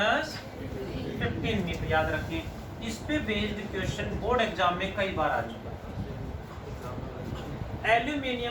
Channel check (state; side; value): identical; both; correlation 1.00